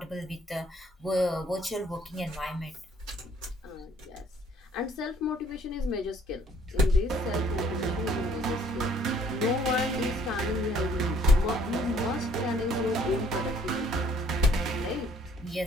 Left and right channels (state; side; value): normal; both; correlation 0.61